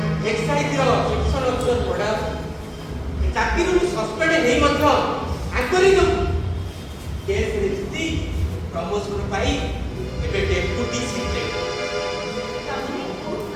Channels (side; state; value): both; identical; correlation 1.00